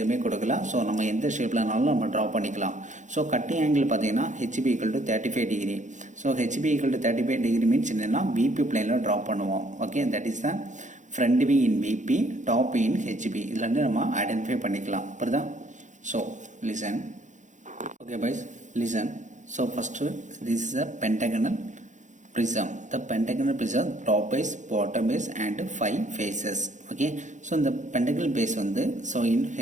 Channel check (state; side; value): late; left; 0.35 ms